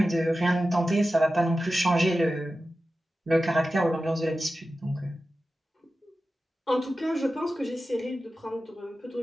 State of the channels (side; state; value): both; normal; correlation 0.94